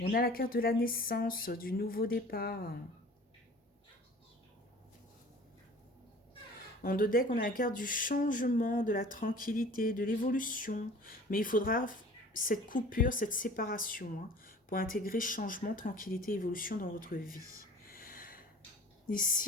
a la carte de la naissance, du nouveau départ. En deux decks, on a la carte du changement, de la tranquillité, de l'évolution. Mais il faudra cette coupure, cette séparation, hein, pour intégrer changement, tranquillité, évolution dans votre vie.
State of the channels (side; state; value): both; normal; correlation 0.45